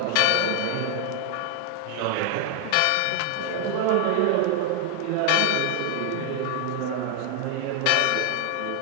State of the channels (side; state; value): both; different; correlation 0.00